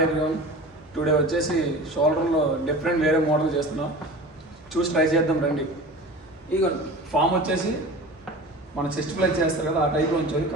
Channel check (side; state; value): both; normal; correlation 0.36